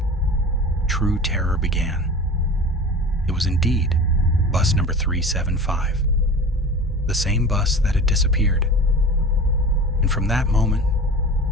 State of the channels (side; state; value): both; normal; correlation 0.36